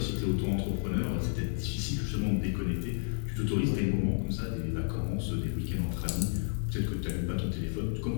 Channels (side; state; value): right; silent; digital silence